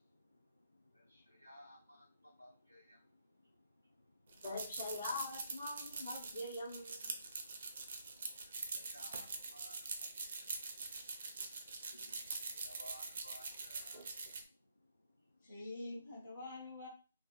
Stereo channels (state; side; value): inverted; both; correlation -0.72